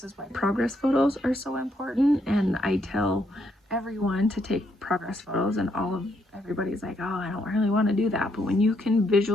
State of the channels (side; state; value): both; normal; correlation 0.74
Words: is why progress photos are so important. And I tell everyone to take progress photos, and everybody's like, oh, I don't really want to do that. But when you can